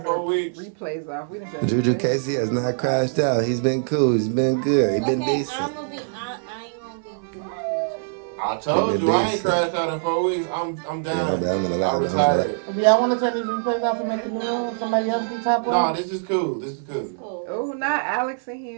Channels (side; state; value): left; silent; 60 dB below the other